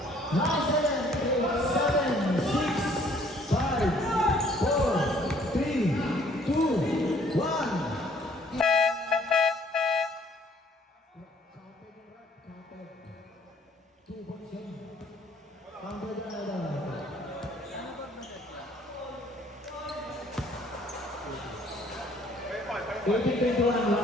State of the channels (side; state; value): both; normal; correlation 0.60